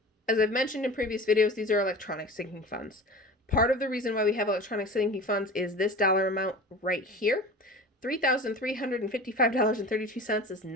As I've mentioned in previous videos, these are electronic sinking funds. Part of the reason why we have electronic sinking funds is this dollar amount right here. $3,355.32 is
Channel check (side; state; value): both; normal; correlation 0.36